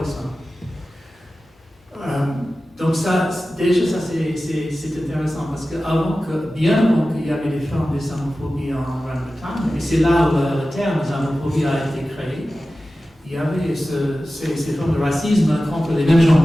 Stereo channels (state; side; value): normal; both; correlation 0.95